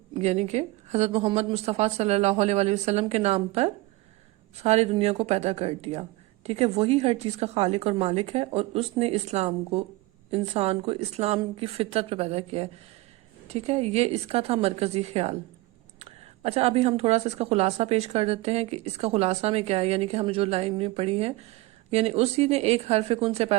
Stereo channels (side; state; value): left; quieter; 20.2 dB